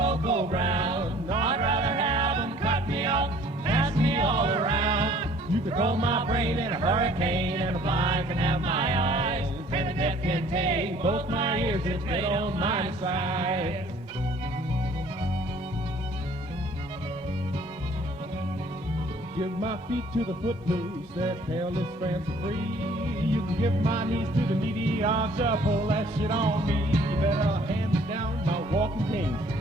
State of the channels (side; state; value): both; normal; correlation 0.56